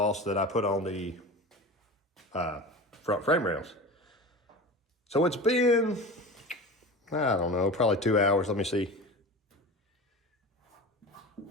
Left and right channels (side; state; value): both; normal; correlation 0.31